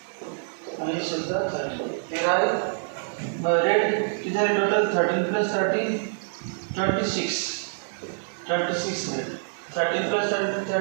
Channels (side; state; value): left; silent; digital silence